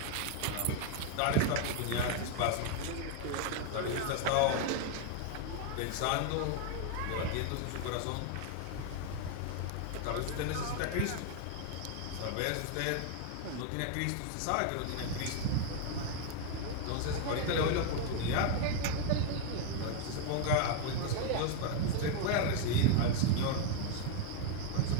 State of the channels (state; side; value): different; both; correlation 0.00